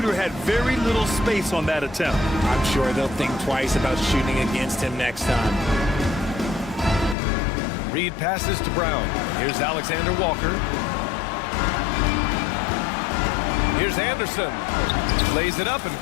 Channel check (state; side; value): drops out; right; at 7.2 s